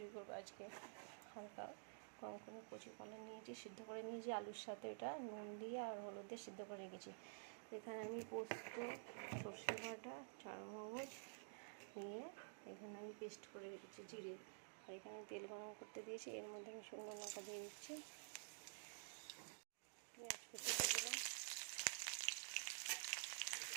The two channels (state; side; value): silent; left; digital silence